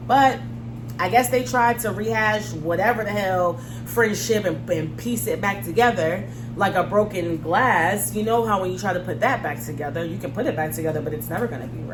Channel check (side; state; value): both; identical; correlation 1.00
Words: But I guess they tried to rehash whatever the hell friendship and piece it back together like a broken glass. You know how when you try to put that back together, you can put it back together, but it's never going to be